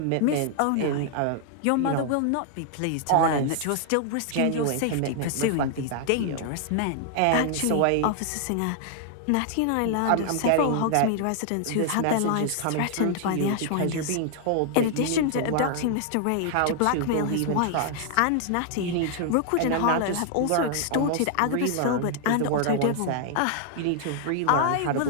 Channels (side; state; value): both; different; correlation 0.00